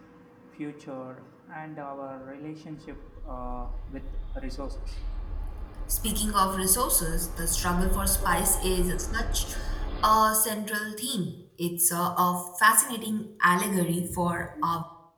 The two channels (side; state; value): both; identical; correlation 1.00